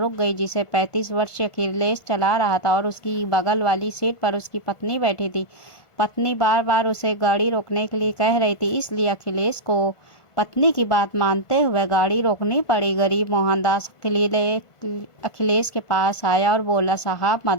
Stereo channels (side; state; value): right; late; 1.5 ms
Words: गई, जिसे 35 वर्षीय अखिलेश चला रहा था और उसकी बगल वाली सीट पर उसकी पत्नी बैठी थी। पत्नी बार बार उसे गाड़ी रोकने के लिए कह रही थी, इसलिए अखिलेश को पत्नी की बात मानते हुए गाड़ी रोकनी पड़ी। गरीब मोहनदास अखिलेश के पास आया और बोला, साहब